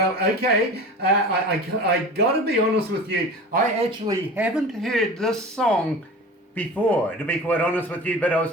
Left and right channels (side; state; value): both; normal; correlation 0.35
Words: okay, I got to be honest with you, I actually haven't heard this song before, to be quite honest with you, but I was